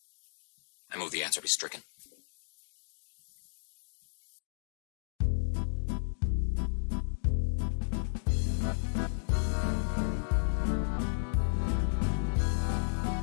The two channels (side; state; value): right; silent; digital silence